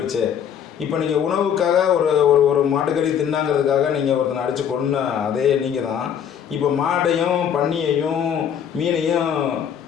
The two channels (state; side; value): quieter; right; 8.5 dB